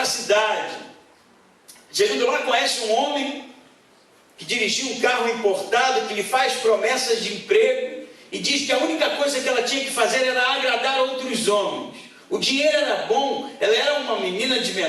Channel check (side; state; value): both; identical; correlation 1.00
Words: a cidade. Chegando lá, conhece um homem que dirigia um carro importado, que lhe faz promessas de emprego e diz que a única coisa que ela tinha que fazer era agradar outros homens. O dinheiro era bom, ela era uma menina de